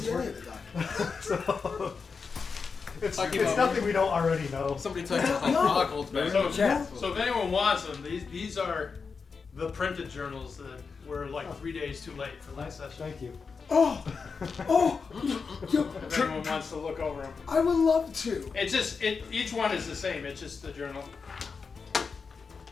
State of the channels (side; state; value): right; quieter; 5.2 dB